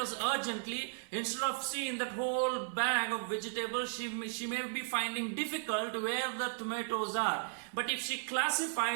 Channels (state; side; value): silent; left; digital silence